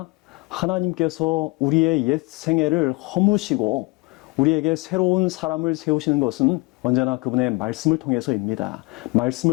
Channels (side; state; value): right; quieter; 26.1 dB